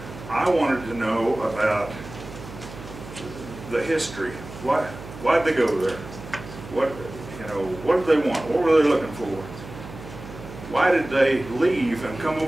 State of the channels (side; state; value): right; noise; hum, 14 dB below the sound